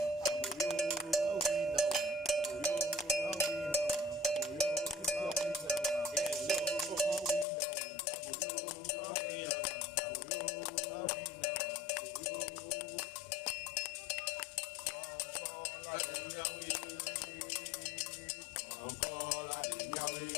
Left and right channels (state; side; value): drops out; right; at 7.5 s